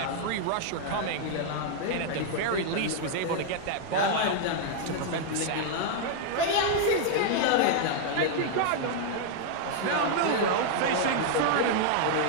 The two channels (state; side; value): different; both; correlation 0.00